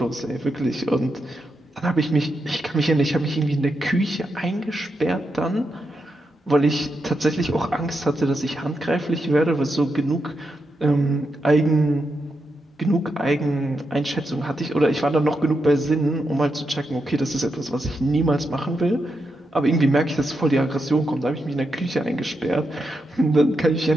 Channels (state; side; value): normal; both; correlation 0.85